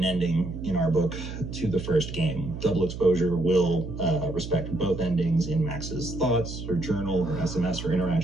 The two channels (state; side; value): noise; right; hum, 8 dB below the sound